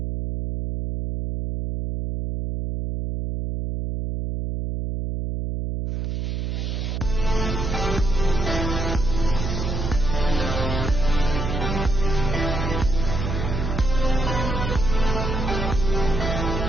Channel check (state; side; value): noise; right; hum, 2 dB below the sound